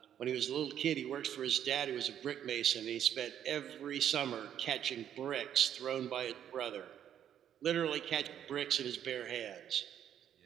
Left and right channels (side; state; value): left; quieter; 9.9 dB